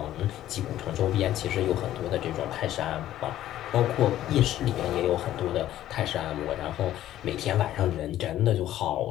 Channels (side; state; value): right; quieter; 13.0 dB